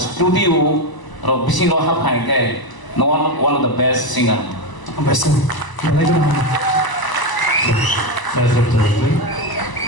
ro bising ro hap hai ke, one of the best singer. Best, mana itu nama? Saya setuju.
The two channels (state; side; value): late; right; 1.0 ms